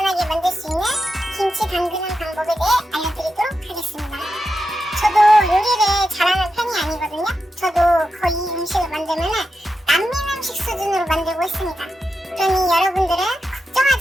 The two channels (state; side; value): normal; both; correlation 0.89